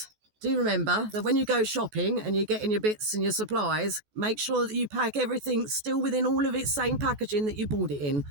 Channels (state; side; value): late; left; 14 ms